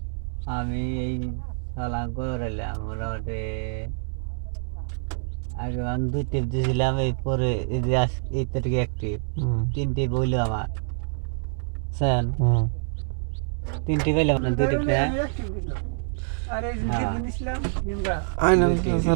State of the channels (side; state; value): left; silent; 61 dB below the other